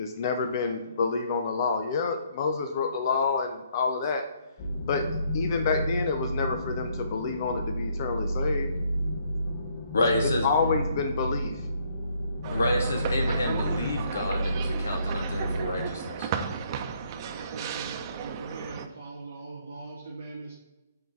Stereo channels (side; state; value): both; inverted; correlation -0.67